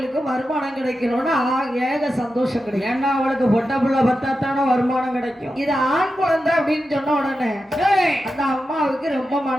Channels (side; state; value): both; normal; correlation 0.90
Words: வருமானம் கிடைக்கணும்னு ஏக சந்தோஷம் கிடைக்கும். ஏன்னா அவளுக்கு பொட்டை பிள்ளை பத்தாத்தான வருமானம் கிடைக்கும். இது ஆண் குழந்தை அப்படின்னு சொன்ன உடனே அந்த அம்மாவுக்கு ரொம்ப